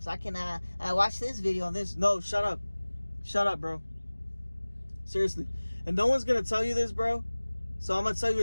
I can watch this video on this. No, shut up. Shut up, bro. Seriously. And no one's going to tell you this, bro. So I'm going to tell you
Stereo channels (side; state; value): both; inverted; correlation -1.00